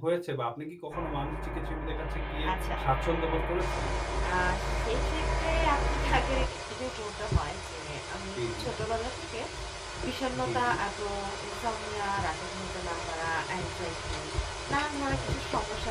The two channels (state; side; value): identical; both; correlation 1.00